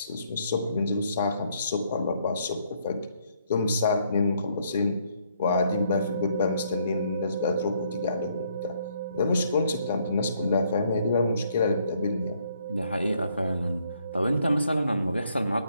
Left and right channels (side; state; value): both; inverted; correlation -0.69